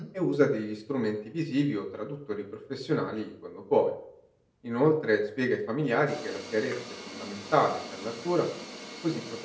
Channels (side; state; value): both; identical; correlation 1.00